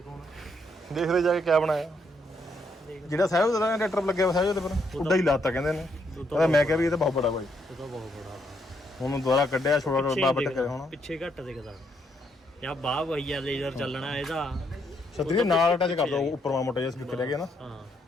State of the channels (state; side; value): normal; both; correlation 0.74